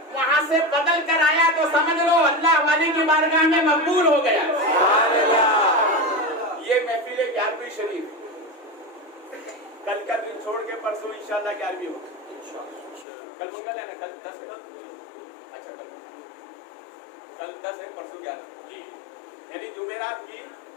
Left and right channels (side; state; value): right; drops out; at 13.1 s